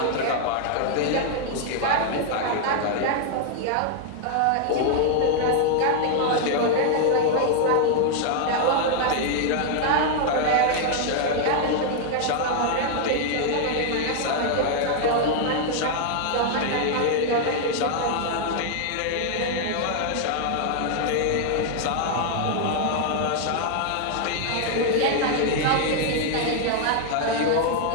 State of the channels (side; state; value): both; different; correlation 0.00